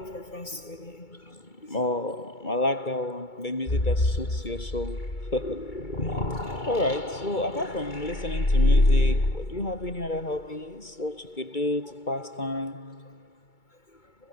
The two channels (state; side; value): late; right; 2.3 ms